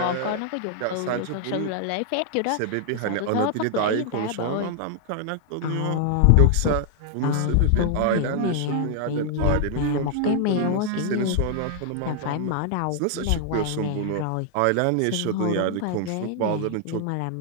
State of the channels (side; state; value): both; different; correlation -0.01